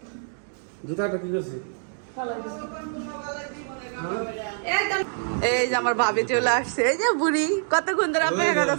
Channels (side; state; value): left; silent; digital silence